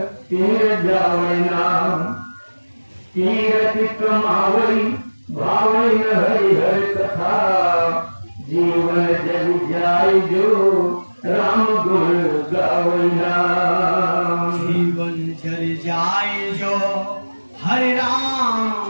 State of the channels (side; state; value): both; inverted; correlation -1.00